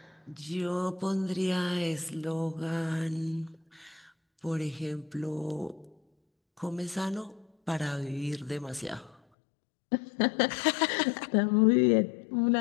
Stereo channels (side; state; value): right; drops out; at 9.2 s